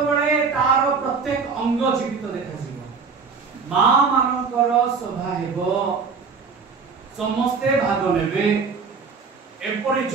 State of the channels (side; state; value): left; quieter; 5.2 dB